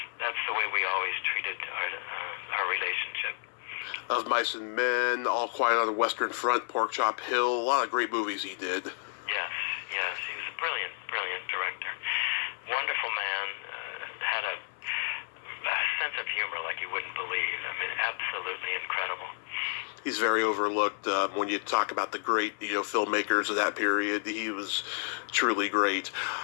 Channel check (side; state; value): right; silent; 57 dB below the other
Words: the way we always treated our relationship. Of Mice and Men, All Quiet on the Western Front, Pork Chop Hill, a lot of great movies he did. he's very overlooked when you talk about the great filmmakers of that period. He was truly great.